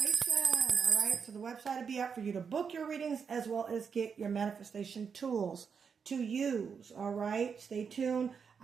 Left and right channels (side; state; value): left; quieter; 6.3 dB